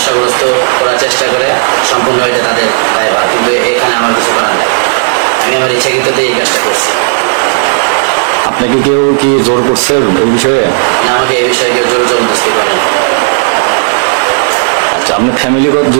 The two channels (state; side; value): silent; left; digital silence